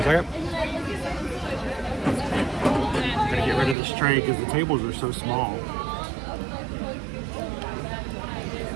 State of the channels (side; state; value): left; drops out; at 3.8 s